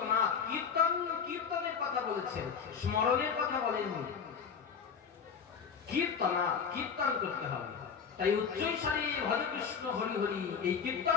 কীর্তন, কীর্তনের কথা বলেছেন, স্মরণের কথা বলেননি। কীর্তনাথ, কীর্তন করতে হবে। তাই উচ্চৈস্বরে ভজ কৃষ্ণ হরি হরি এই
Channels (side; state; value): right; quieter; 6.5 dB